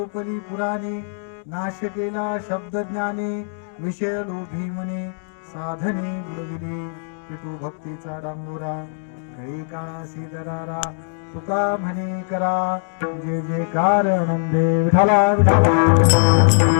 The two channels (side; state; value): right; silent; digital silence